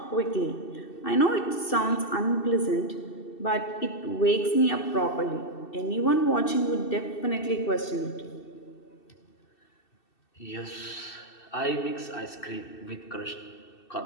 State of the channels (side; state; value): right; late; 2.7 ms